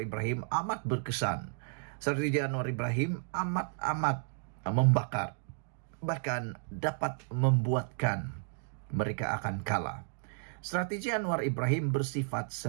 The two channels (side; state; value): left; silent; digital silence